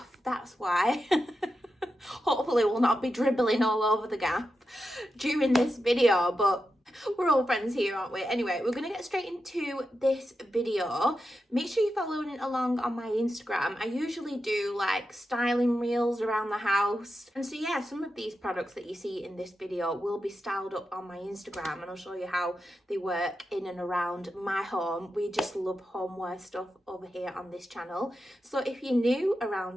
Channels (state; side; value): normal; both; correlation 0.89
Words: that's why. Hopefully we'll not be dribbling all over the gap during this video, but we're all friends here, aren't we? Anyway, we're going to get straight into this video. Make sure you're following along on my Instagram. I usually do like styling reels around the house. And so yeah, some of these products that you see in this video will be styled up on my Instagram, and I'll show you how they work in and around my home. We just love homeware stuff over here on this channel. So if you're new